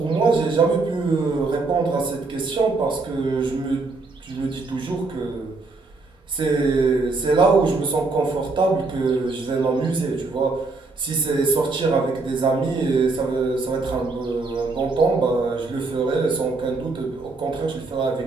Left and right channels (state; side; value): quieter; left; 3.7 dB